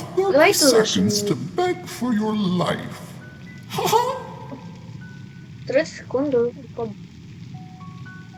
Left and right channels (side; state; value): both; identical; correlation 1.00